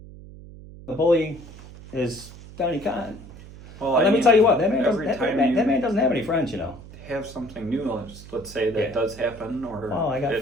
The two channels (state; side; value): noise; right; hum, 17 dB below the sound